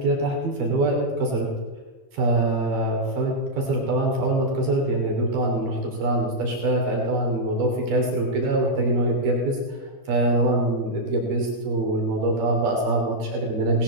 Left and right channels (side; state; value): left; late; 12 ms